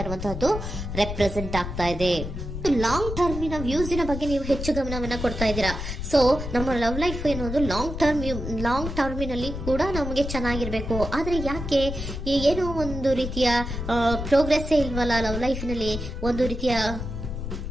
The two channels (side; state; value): left; noise; rumble, 6 dB below the sound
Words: ಇರುವಂತಹದ್ದು ರೆಪ್ರೆಸೆಂಟ್ ಆಗ್ತಾ ಇದೆ. ಲಾಂಗ್ ಟರ್ಮಿನ ವ್ಯೂಸಿನ ಬಗ್ಗೆ ನೀವು ಹೆಚ್ಚು ಗಮನವನ್ನ ಕೊಡ್ತಾ ಇದ್ದೀರಾ. ಸೊ ನಮ್ಮ ಲವ್ ಲೈಫ್ ಏನೋದು ಲಾಂಗ್ ಟರ್ಮಿನಲ್ಲಿ ಕೂಡ ನಮಗೆ ಚೆನ್ನಾಗಿರ್ಬೇಕು. ಆದ್ರೆ ಯಾಕೆ ಏನೋ ಒಂದು ರೀತಿಯ ಪ್ರೋಗ್ರೆಸ್ ಇಲ್ವಲ್ಲ ಲವ್ ಲೈಫಿನಲ್ಲಿ,